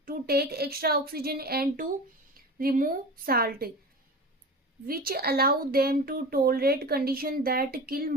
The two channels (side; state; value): both; normal; correlation 0.32